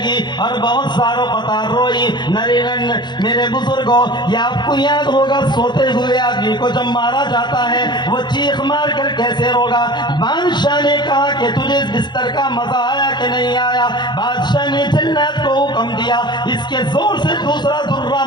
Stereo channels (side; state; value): right; late; 0.21 ms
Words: اور بہت ساروں قطار روئی۔ نرینن میرے بزرگوں، یہ آپ کو یاد ہوگا سوتے ہوئے آدمی کو جب مارا جاتا ہے وہ چیخ مار کر کیسے روگا۔ بادشاہ نے کہا کہ تجھے اس بستر کا مزہ آیا کہ نہیں آیا؟ بادشاہ نے جلاد کو حکم دیا اس کے زور سے دوسرا درہ